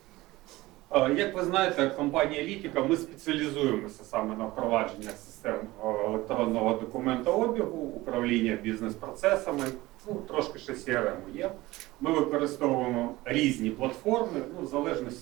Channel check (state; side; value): quieter; left; 19.1 dB